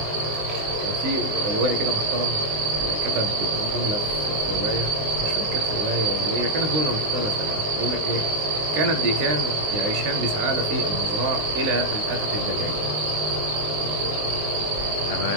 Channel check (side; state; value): left; late; 19 ms